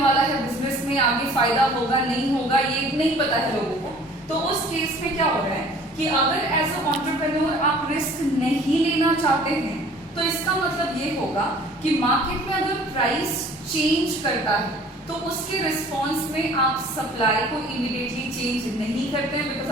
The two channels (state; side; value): normal; both; correlation 0.50